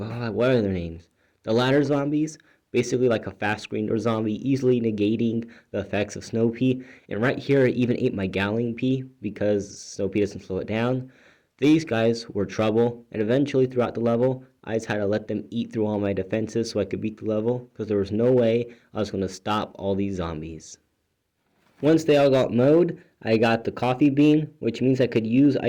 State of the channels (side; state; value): both; identical; correlation 1.00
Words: what are their names? The ladder zombies, basically like a fast screener zombie, easily negating the effects of snow pea. And right here I even ate my galleon pea because snow pea doesn't slow it down. These guys were trouble, and eventually throughout the level, I just had to let them eat through all my defenses so I could beat the level, because there was no way I was going to stop all these zombies. Once they all got mowed, I got the coffee bean, which means I could use